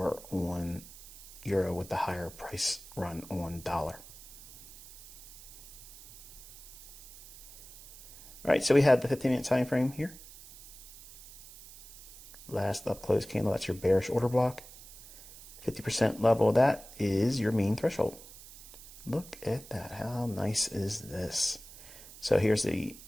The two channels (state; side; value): noise; right; hiss, 17 dB below the sound